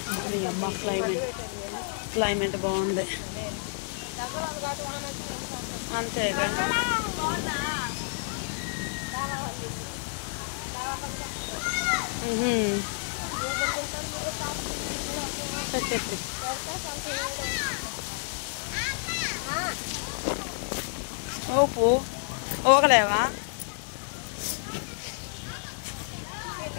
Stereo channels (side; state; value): right; silent; digital silence